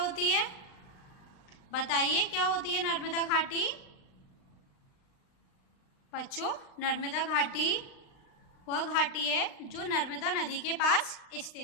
है? बताइए क्या होती है नर्मदा घाटी? बच्चों, नर्मदा घाटी वह घाटी है जो नर्मदा नदी के पास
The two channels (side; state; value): right; late; 39 ms